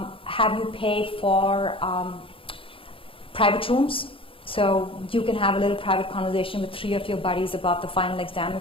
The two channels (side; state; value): right; late; 0.26 ms